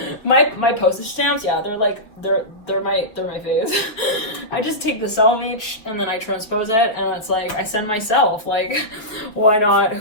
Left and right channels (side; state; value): right; late; 4.6 ms